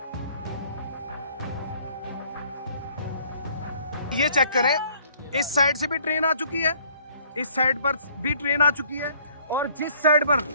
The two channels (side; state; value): both; inverted; correlation -0.59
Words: ये चेक करें, इस साइड से भी ट्रेन आ चुकी है, इस साइड पर भी ट्रेन आ चुकी है और जिस साइड पर